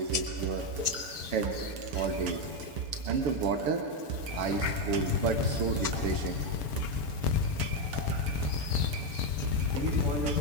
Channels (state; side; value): late; left; 7.0 ms